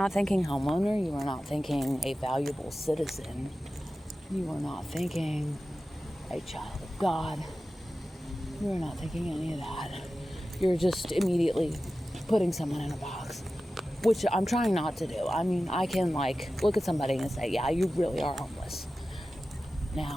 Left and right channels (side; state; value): both; normal; correlation 0.94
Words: thinking homeowner, you are not thinking a valuable citizen, you are not thinking a child of God, you are not thinking any of that. You're just immediately putting someone in a box, which I'm trying not to do. I mean, I can look at somebody and say, yeah, you really are homeless.